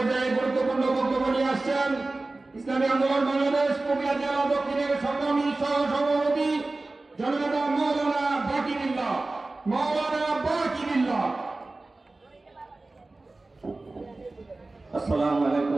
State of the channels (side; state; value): left; quieter; 3.2 dB